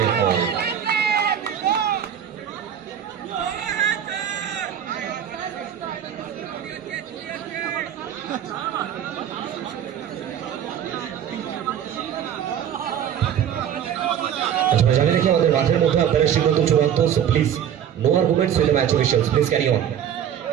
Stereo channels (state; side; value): quieter; left; 9.5 dB